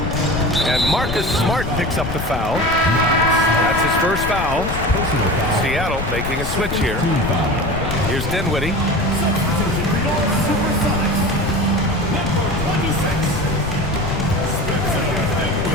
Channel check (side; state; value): left; noise; rumble, 6 dB below the sound